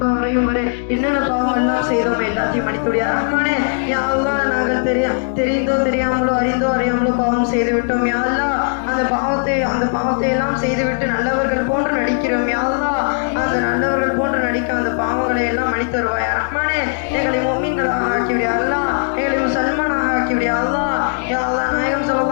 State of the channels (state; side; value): silent; right; 67 dB below the other